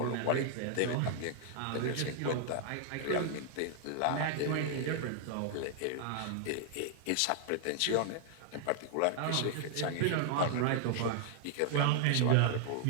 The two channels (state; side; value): different; both; correlation -0.01